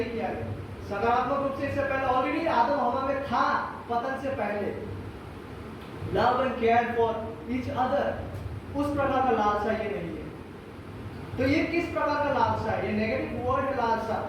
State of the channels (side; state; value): both; identical; correlation 1.00